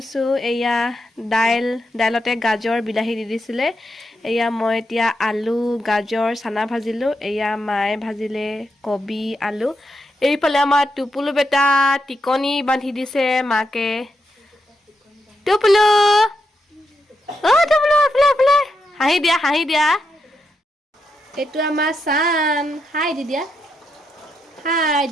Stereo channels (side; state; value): both; normal; correlation 0.83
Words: এয়া দাইলতে গাজৰ বিলাহী দি দিছিলে। এয়া মই এতিয়া আলু গাজৰ চানা ভাজিলোঁ। এয়া মায়ে ভাজিলে কবি আলু। এইফালে আমাৰ টুপুলু বেটা টিকনি বান্ধি দিছে মাকে। টুপুলু টুপুলু এইফালে হাঁহি দিয়া, হাঁহি দিয়া। এইটো আমাৰ চান, হাই দি দিয়া, হাই